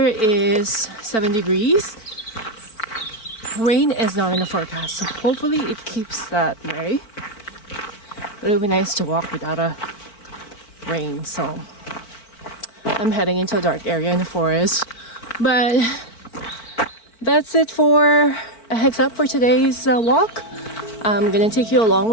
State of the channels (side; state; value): right; late; 4.5 ms